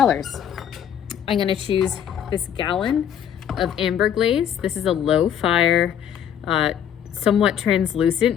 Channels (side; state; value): right; quieter; 9.3 dB